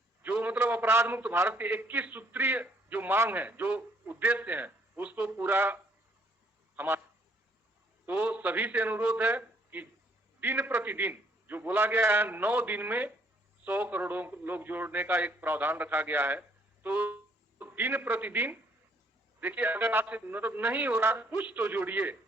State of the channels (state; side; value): normal; both; correlation 0.65